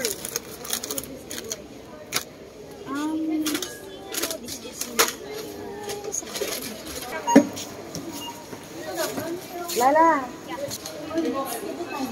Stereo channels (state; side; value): identical; both; correlation 1.00